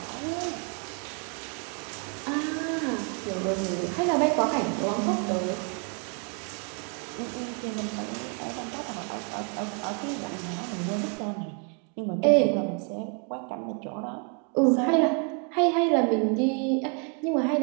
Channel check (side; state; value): left; quieter; 37.3 dB